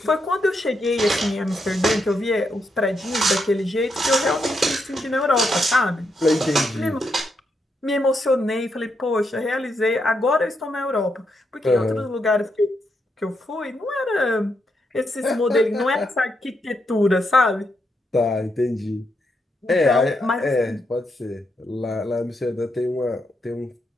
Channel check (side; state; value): both; normal; correlation 0.81